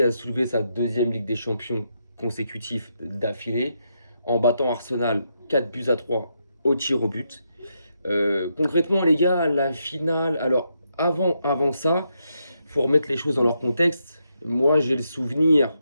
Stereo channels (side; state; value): both; inverted; correlation -0.81